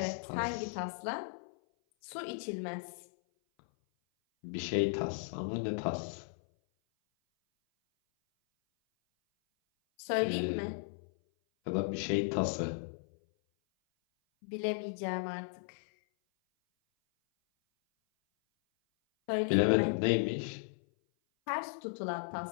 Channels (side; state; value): right; silent; 54 dB below the other